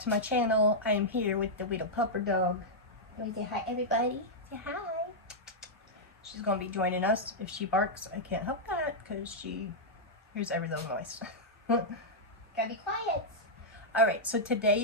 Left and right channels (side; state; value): both; normal; correlation -0.07